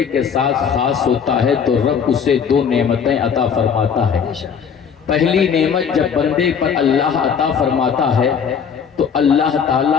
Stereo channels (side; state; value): right; quieter; 7.0 dB